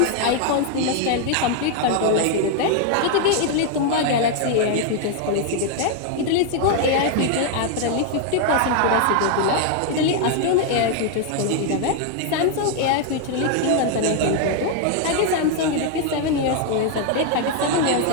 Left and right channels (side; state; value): both; different; correlation 0.00